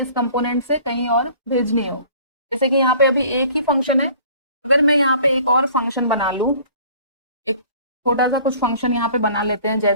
कंपोनेंट से कहीं और भेजनी हो। जैसे कि यहाँ पे अभी एक ही फंक्शन है, अगर मैं यहाँ पे एक और फंक्शन बना लूँ, एक छोटा सा कुछ फंक्शन यहाँ पे बना लेते हैं,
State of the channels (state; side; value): inverted; both; correlation -0.51